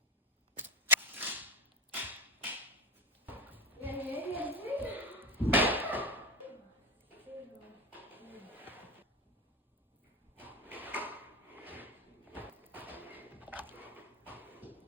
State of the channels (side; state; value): both; normal; correlation 0.20